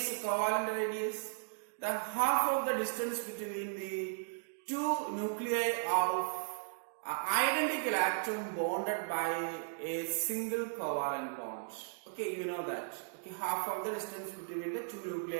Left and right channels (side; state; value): left; silent; digital silence